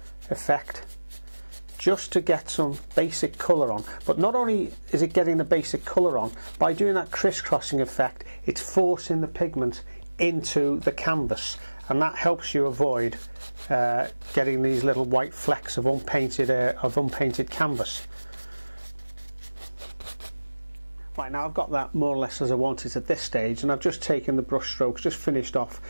effect just to get some basic colour on. But not only is it getting the basic colour on, by doing that crisscrossing effect, it's forcing the pigment into the canvas, and that helps you avoid getting these little white flecks of unpainted canvas. Right, now I've got that more or less as I want it at this stage, and I've just taken the brush strokes, just finished off,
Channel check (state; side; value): inverted; both; correlation -1.00